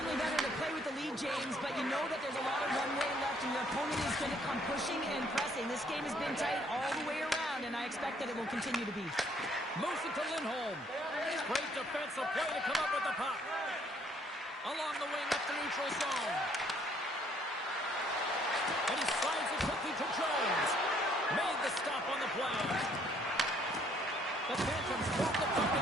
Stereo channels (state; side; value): normal; both; correlation 0.65